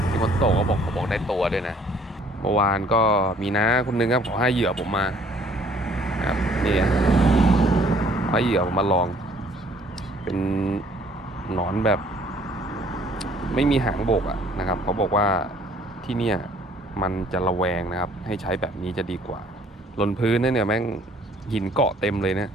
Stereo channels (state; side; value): normal; both; correlation 0.59